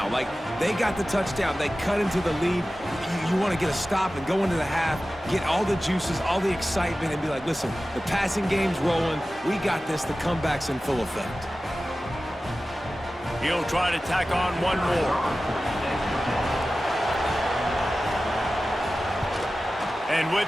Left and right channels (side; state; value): both; normal; correlation 0.95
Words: Like, they got the touchdown. They cut into the lead. You want to get a stop and go into the half, get all the juices, all the excitement, and be like, listen, the passing game's rolling. We got this. The comeback's in full effect. He'll try to tack on one more. And